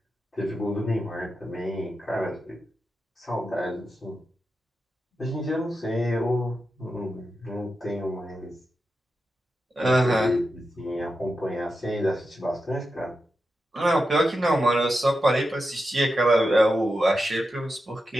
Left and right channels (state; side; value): normal; both; correlation 0.89